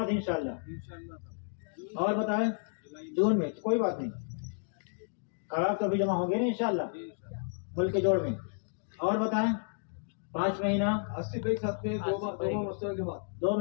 انشاءاللہ. اور بتائیں جون میں کوئی بات نہیں, خراب تو ابھی جمع ہوں گے نا انشاءاللہ ملک کے جوڑ میں. اور بتائیں 5 مہینہ 80 کے ساتھ میں 2 ماہ مستقبل کے بعد 2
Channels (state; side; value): silent; right; digital silence